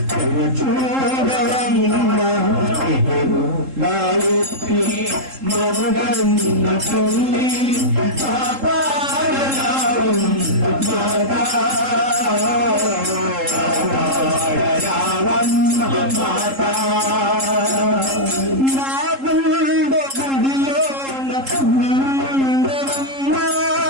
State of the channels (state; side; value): late; left; 3.7 ms